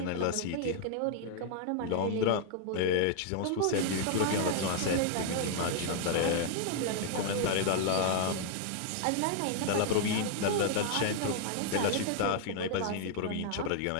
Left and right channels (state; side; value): different; both; correlation 0.00